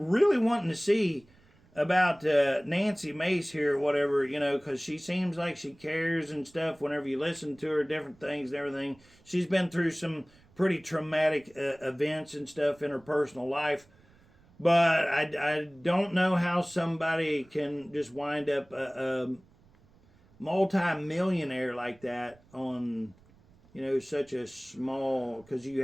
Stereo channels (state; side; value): noise; right; rumble, 29 dB below the sound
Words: wanting to see about Nancy Mace here, whatever, because she seems like she cares and stuff whenever you listen to her, different things and everything. She's been through some pretty traumatic events and stuff in her personal life. But I don't know how somebody can just wind up a multi-millionaire like that on, such a small, because you